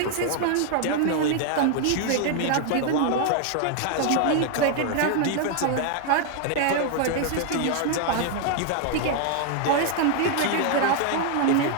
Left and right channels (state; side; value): different; both; correlation 0.00